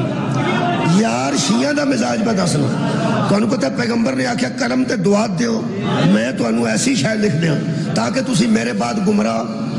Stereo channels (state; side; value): identical; both; correlation 1.00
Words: یار شیعہ دا مزاج پہ دسنا تو انہوں پتہ پیغمبر نے آکھیا قلم تے دعات دیو میں تو انہوں ایسی شاید لکھ دیا تاکہ تسی میرے بعد گمراہ